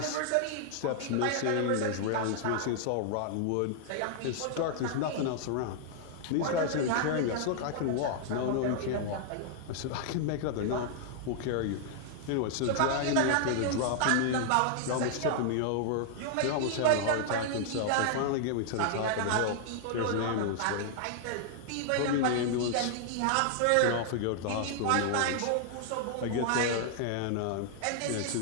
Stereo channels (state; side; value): different; both; correlation -0.01